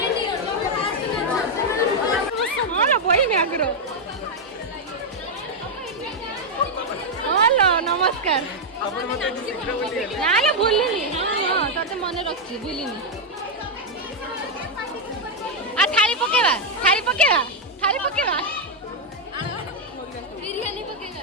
ବହି ମ୍ୟାଗ୍ର ହ୍ୟାଲୋ ନମସ୍କାର ନା ଭୁଲିନି ହଁ ତତେ ମନେ ରଖିଛି ଭୁଲିନି ଥାଳି ପକେଇବା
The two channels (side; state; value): both; normal; correlation 0.00